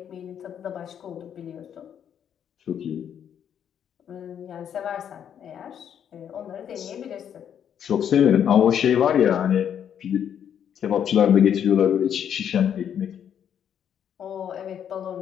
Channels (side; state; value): right; quieter; 8.9 dB